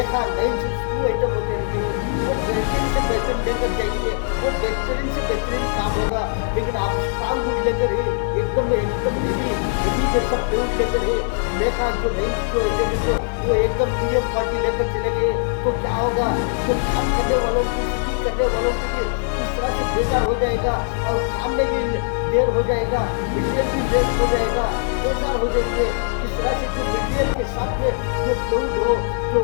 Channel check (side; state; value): right; silent; digital silence